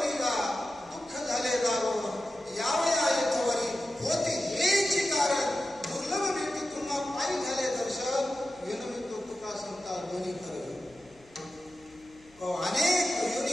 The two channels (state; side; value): noise; left; hum, 28 dB below the sound